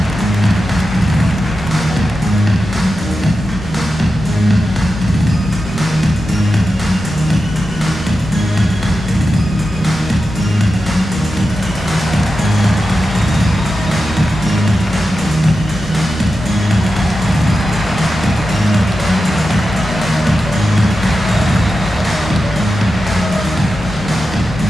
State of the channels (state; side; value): normal; both; correlation 0.91